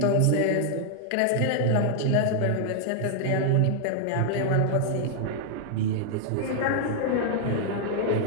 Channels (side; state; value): both; different; correlation 0.00